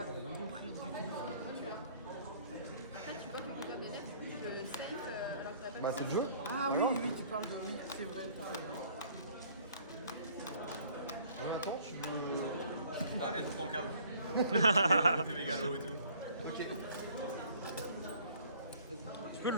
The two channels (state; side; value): inverted; both; correlation -0.56